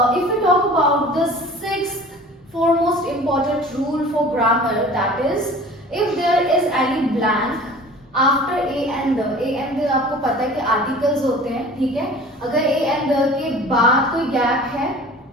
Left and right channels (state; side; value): normal; both; correlation 0.43